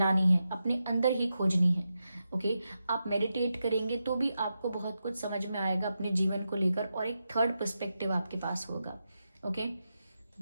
है, अपने अंदर ही खोजनी है। ओके, आप मेडिटेट करेंगे तो भी आपको बहुत कुछ समझ में आएगा अपने जीवन को लेकर, और एक थर्ड पर्सपेक्टिव आपके पास होगा। Okay,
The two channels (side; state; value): both; inverted; correlation -0.88